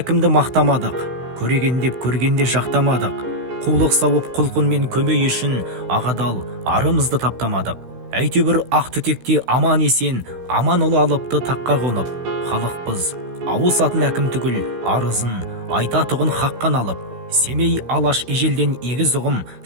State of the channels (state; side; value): late; left; 16 ms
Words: мақтамадық, көреген деп көргенде жақтамадық. Қулық сауып құлқынмен көмей үшін ағадал арымызды таптамадық. Әйтеуір ақ түтекте аман есен, аман ұлы алыпты таққа қонып. Халықпыз, ауысатын әкім түгіл, арызын айтатұғын хаққан алып. Семей алаш ежелден егіз ұғым